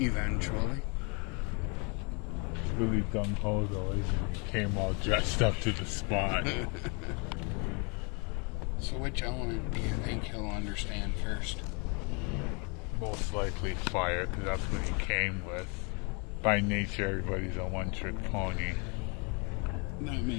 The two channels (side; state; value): right; quieter; 33.5 dB